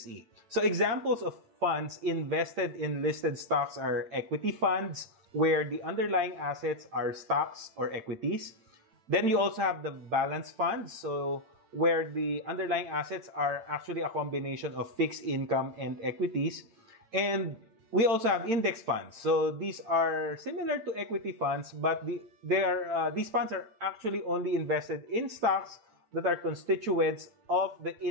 So examples of funds invested in listed stocks are equity funds, where the underlying assets are stocks or equities. Then you also have the balance funds, so where the underlying assets are actually a combination of fixed income and equities. And we also have index funds. So these are similar to equity funds, but these funds are actually only invested in stocks that are constituents of the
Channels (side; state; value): left; late; 8.9 ms